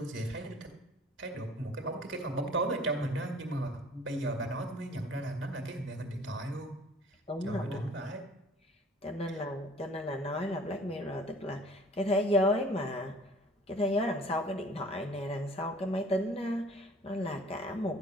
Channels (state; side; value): normal; both; correlation 0.51